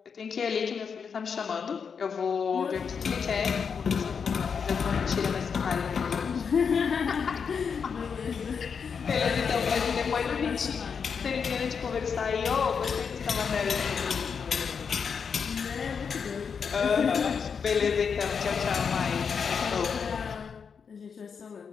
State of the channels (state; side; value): quieter; right; 6.3 dB